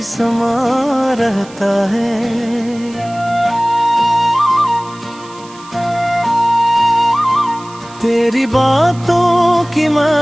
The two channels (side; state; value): right; noise; hiss, 22 dB below the sound